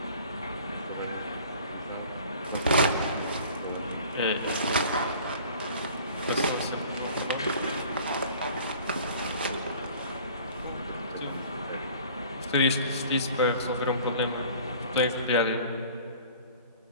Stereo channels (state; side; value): inverted; both; correlation -0.47